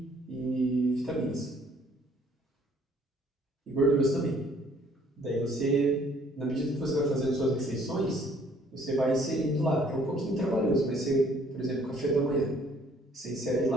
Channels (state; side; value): normal; both; correlation 0.61